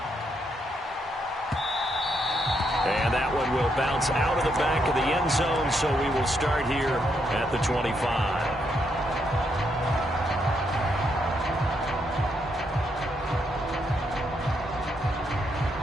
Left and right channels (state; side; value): normal; both; correlation 0.77